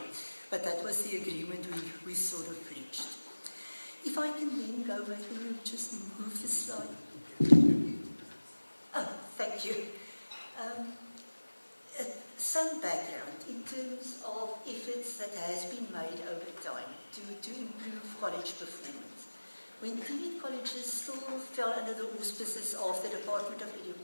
but that was the agreement we sort of reached. If I can then go back, can you just move the slide? Oh, thank you. Some background in terms of efforts that has been made over time to improve college performance. when TVET colleges still fell under the auspices of the Department of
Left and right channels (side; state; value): both; inverted; correlation -1.00